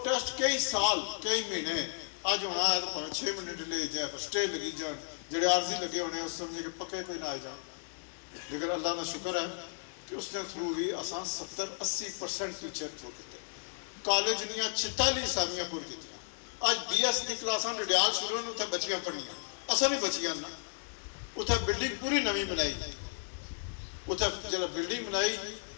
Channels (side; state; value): right; silent; digital silence